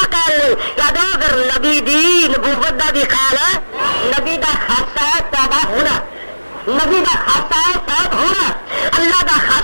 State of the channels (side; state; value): both; inverted; correlation -1.00